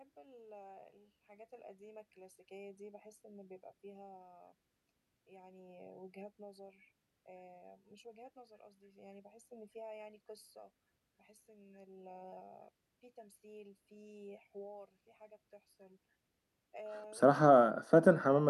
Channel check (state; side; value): identical; both; correlation 1.00